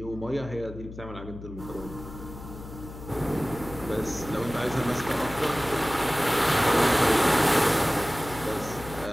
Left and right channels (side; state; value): left; noise; hum, 13 dB below the sound